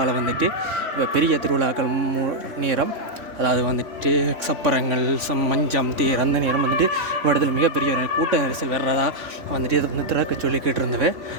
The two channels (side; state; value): left; late; 3.4 ms